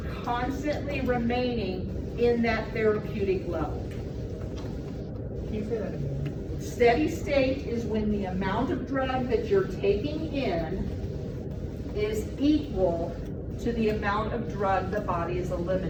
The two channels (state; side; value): identical; both; correlation 1.00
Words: constantly remaining in that therapeutic level. Can you say that again? Steady state is when the amount of drug that you're taking in is equal to the amount of drug the body is